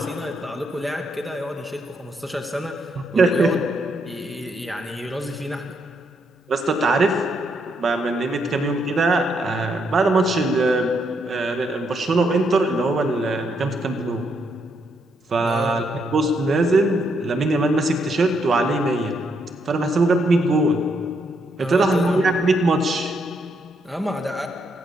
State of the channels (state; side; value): normal; both; correlation 0.76